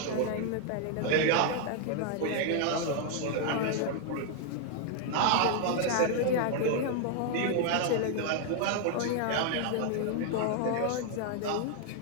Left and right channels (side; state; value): both; different; correlation 0.00